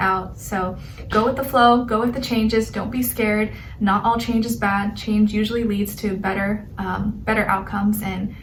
So go with the flow, go with the changes. Don't be scared. Not all change is bad. Change usually leads to better outcomes and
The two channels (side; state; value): both; identical; correlation 1.00